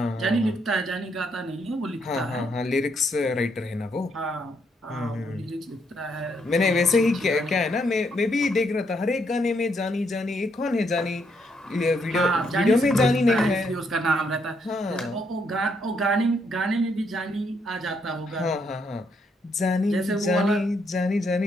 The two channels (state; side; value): normal; both; correlation 0.75